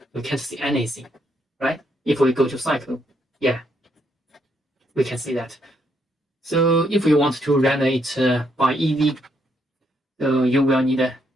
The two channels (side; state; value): both; normal; correlation 0.75